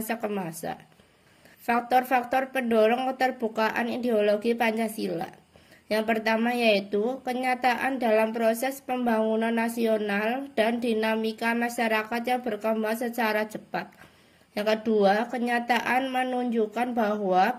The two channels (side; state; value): both; identical; correlation 1.00